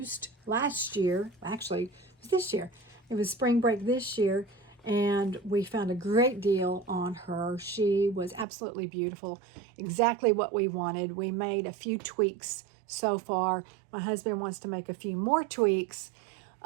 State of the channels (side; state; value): left; drops out; at 8.5 s